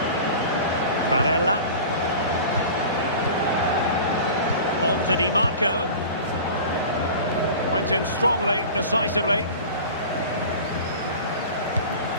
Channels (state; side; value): inverted; both; correlation -0.38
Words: Barella. On to Di Marco. Went in strongly, decisively.